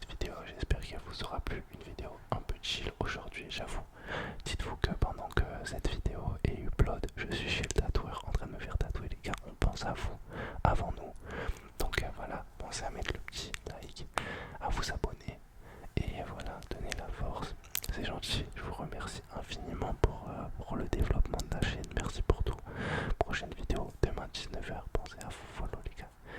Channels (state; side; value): identical; both; correlation 1.00